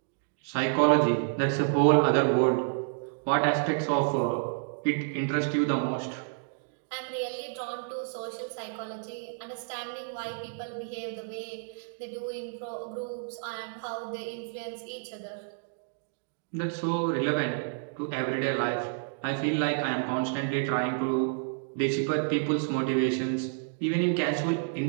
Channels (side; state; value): left; silent; digital silence